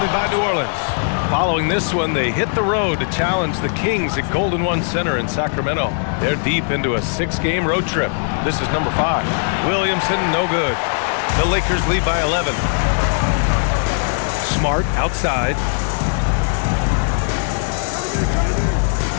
by New Orleans. Following this one, they hit the road to challenge the Kings at Golden One Center in Sacramento. They're deep into a 6-game road trip. This is number 5. Williamson, no good. The Lakers lead by 11. Smart, outside.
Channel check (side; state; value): right; silent; 65 dB below the other